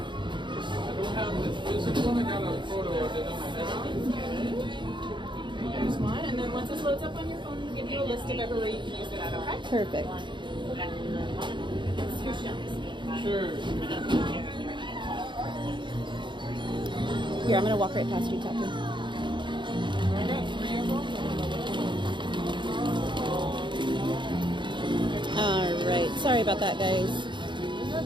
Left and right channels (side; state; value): left; late; 0.23 ms